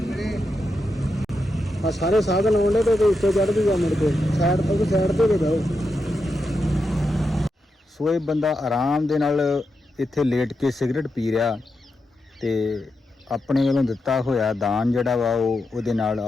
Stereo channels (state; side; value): normal; both; correlation 0.86